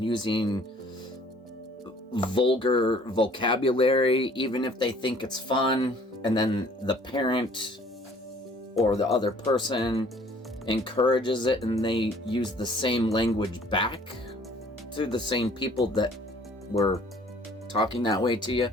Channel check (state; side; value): normal; both; correlation 0.55